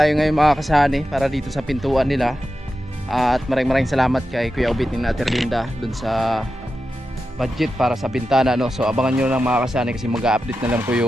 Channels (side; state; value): both; normal; correlation 0.91